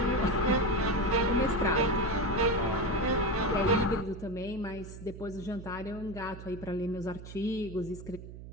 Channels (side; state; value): right; noise; hum, 13 dB below the sound